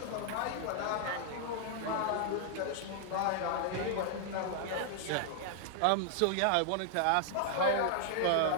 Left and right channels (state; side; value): different; both; correlation 0.00